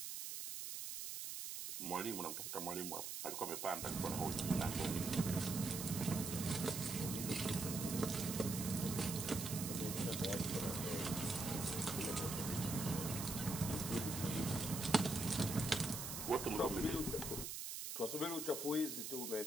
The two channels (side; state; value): right; noise; hiss, 5 dB below the sound